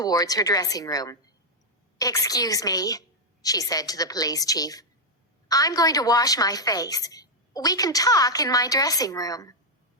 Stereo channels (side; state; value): both; normal; correlation 0.00